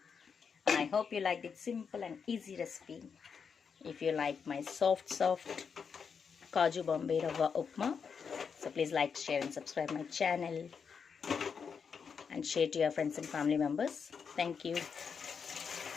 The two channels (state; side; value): quieter; right; 6.3 dB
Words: I hope you like this simple and easy recipe. If you like my soft Kaaju Bombay Ravva Upma, so please like, share and subscribe my channel and share to your friends and family members. Thank you.